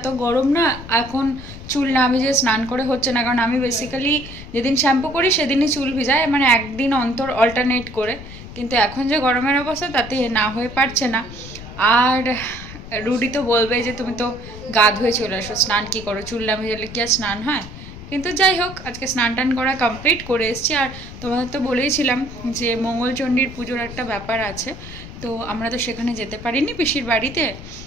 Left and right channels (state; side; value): noise; left; rumble, 13 dB below the sound